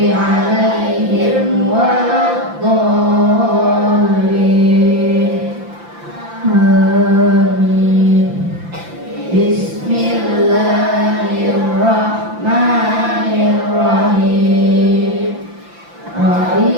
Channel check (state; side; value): late; left; 5.8 ms